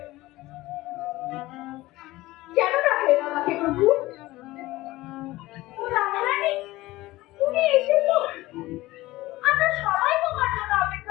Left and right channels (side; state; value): right; quieter; 18.4 dB